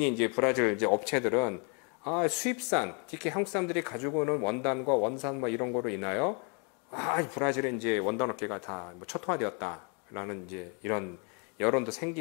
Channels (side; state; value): right; quieter; 35.9 dB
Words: 이제 브라질 이제 업체들은 수입산 특히 한국 사람들이 가지고 오는 원단과 원산 뭐 이런 거로 인하여 브라질의 이제 원단 업계가 다 뭐 초토화되었다라는 이제 이런 여론도